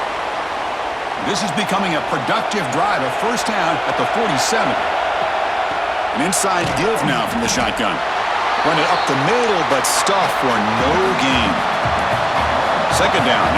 This is becoming a productive drive. A first down at the 47. An inside give now from the shotgun. Run it up the middle, but stuff for no gain. Second down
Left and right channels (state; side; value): identical; both; correlation 1.00